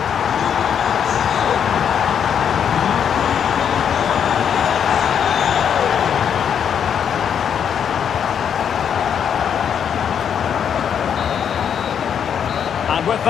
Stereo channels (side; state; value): right; quieter; 8.1 dB